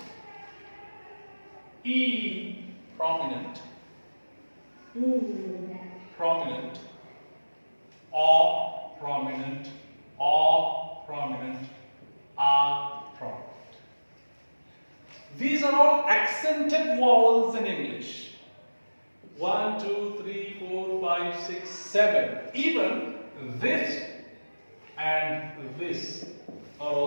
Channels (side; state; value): both; inverted; correlation -1.00